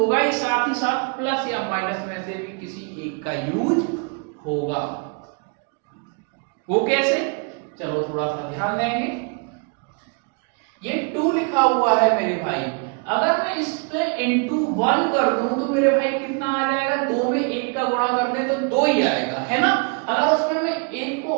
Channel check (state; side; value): quieter; left; 35.0 dB